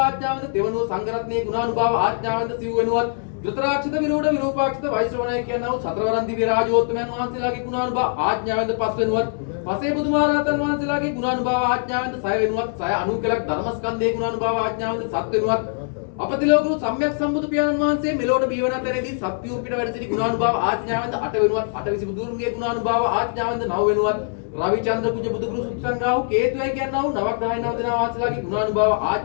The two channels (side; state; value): right; silent; digital silence